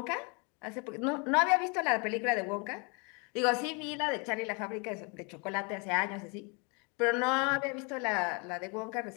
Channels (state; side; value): quieter; right; 32.7 dB